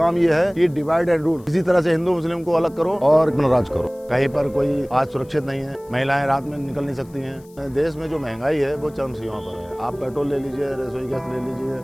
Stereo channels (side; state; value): left; noise; hiss, 28 dB below the sound